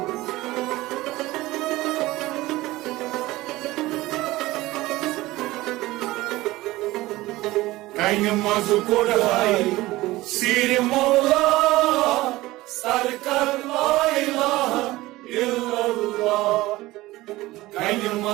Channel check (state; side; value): quieter; left; 18.5 dB